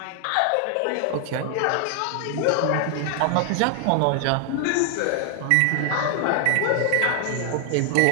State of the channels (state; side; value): different; both; correlation 0.00